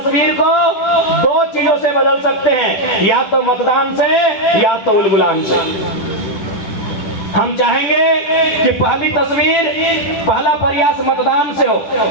को दो चीजों से बदल सकते हैं, या तो मतदान से या तो उलगुलान से। हम चाहेंगे कि पहली तस्वीर, पहला प्रयास मतदान से हो,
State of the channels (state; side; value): late; right; 10 ms